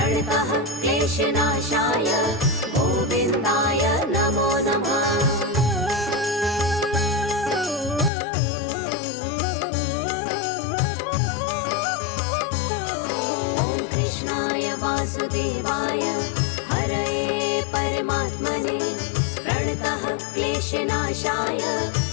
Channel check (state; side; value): drops out; right; at 8.1 s